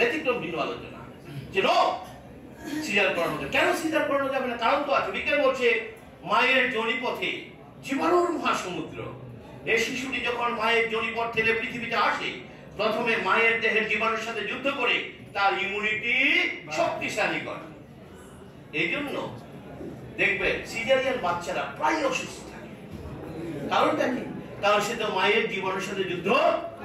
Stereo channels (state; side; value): identical; both; correlation 1.00